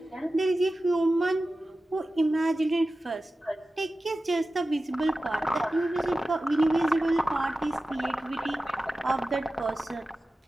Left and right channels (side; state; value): both; normal; correlation 0.95